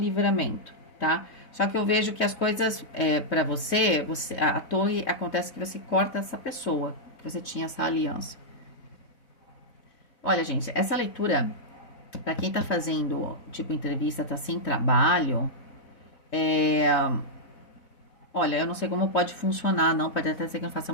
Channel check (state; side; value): late; right; 4.0 ms